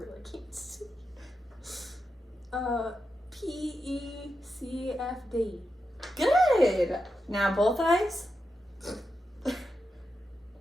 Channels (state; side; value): normal; both; correlation 0.88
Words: can't see. PECFD. Good. Now both eyes.